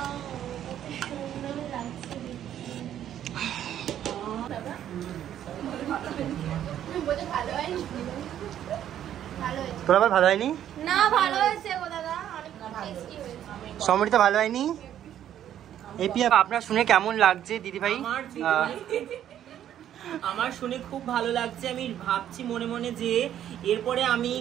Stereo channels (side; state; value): left; quieter; 10.8 dB